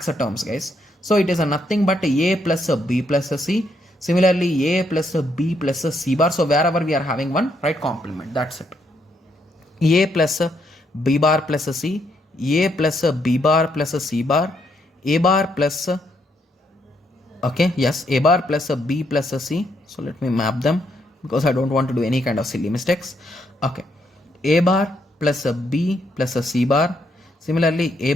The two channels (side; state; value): both; normal; correlation 0.75